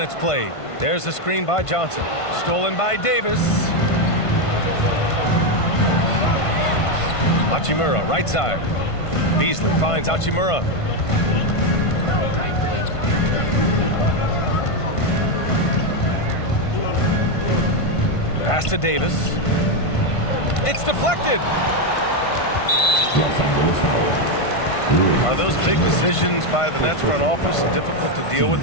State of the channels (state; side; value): late; right; 1.5 ms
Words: played. There's a screen by Johnson. Stolen by Davis. Hachimura, right side. Beasley finds Hachimura. Pass to Davis. It's deflected. Are those big decisions by the Nets front office difficult to deal